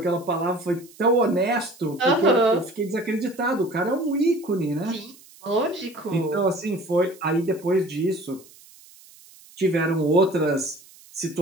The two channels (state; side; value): noise; right; hiss, 24 dB below the sound